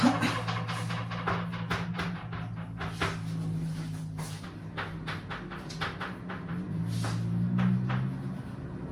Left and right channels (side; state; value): both; identical; correlation 1.00